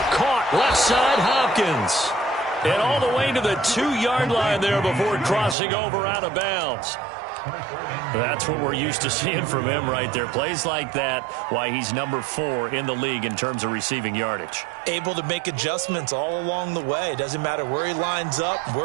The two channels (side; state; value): left; drops out; at 5.6 s